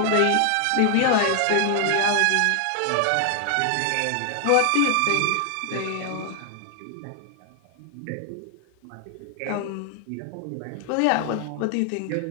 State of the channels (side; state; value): both; different; correlation 0.00